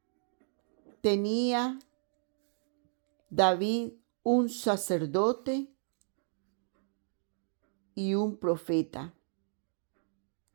tenía David un sacerdote y un profeta.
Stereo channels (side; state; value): left; silent; digital silence